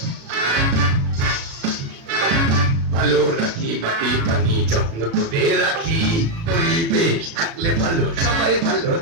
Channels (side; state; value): left; late; 36 ms